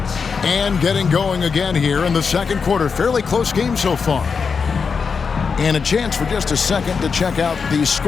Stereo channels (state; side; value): quieter; right; 5.5 dB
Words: And getting going again here in the second quarter. Fairly close game so far. And a chance for just a second to check out the